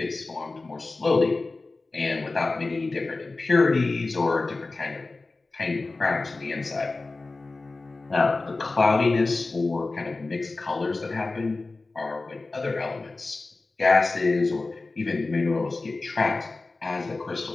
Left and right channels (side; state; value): right; quieter; 3.5 dB